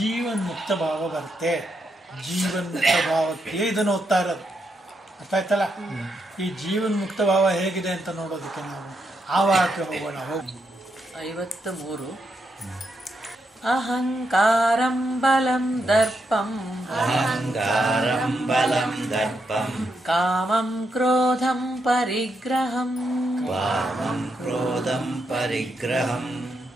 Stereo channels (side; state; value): both; normal; correlation 0.81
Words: ಭಾವ ಬರುತ್ತೆ. ಜೀವನ್ಮುಕ್ತ ಭಾವಕ್ಕೆ ಇದನ್ನು ಓದ್ತಾ ಇರೋದು. ಅರ್ಥ ಆಯ್ತಲ್ಲ? ಈ ಜೀವನ್ಮುಕ್ತ ಭಾವ ಹೇಗಿದೆ ಅಂತ ನೋಡೋದಕ್ಕೆ ನಾವು ಆವಾಹಕ್ಕೆ ಹೋಗೋಣ. 53 ಅಹಂಕಾರಂ ಬಲಂ ದರ್ಪಂ ಕಾಮಂ ಕ್ರೋಧಂ ಪರಿಗ್ರಹಂ